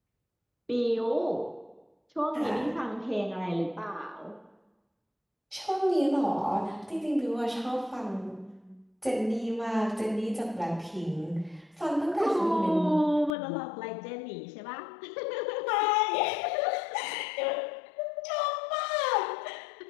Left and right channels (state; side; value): drops out; right; at 13.4 s